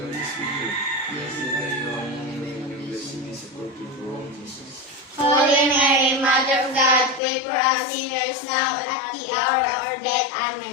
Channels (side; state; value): right; drops out; at 7.2 s